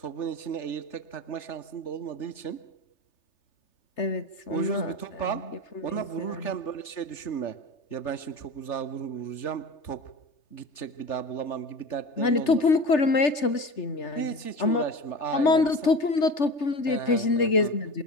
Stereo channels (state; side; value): late; right; 3.3 ms